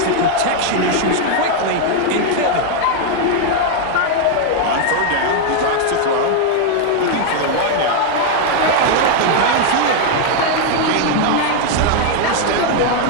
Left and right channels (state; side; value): different; both; correlation 0.00